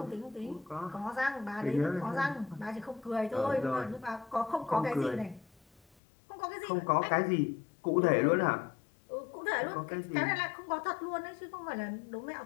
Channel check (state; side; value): drops out; right; at 5.8 s